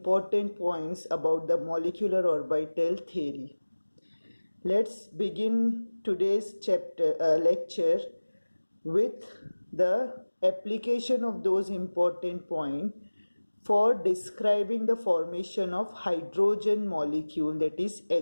points about the molecular orbital theory. Let's begin today's lecture with the application of those important points for describing the formation of hydrogen molecule, that is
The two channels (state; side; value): inverted; both; correlation -1.00